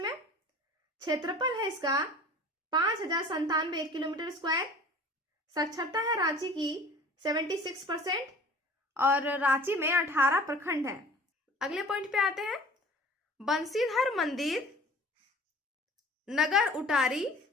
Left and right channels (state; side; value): normal; both; correlation 0.46